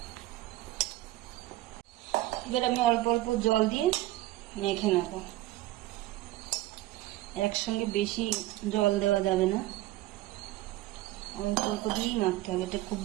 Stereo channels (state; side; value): quieter; left; 16.3 dB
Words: এবার আমি অল্প অল্প জল দিয়ে মেখে নেব। একসঙ্গে বেশি জল দেওয়া যাবে না, অল্প অল্প দিয়েই মাখতে হবে। এতে খুব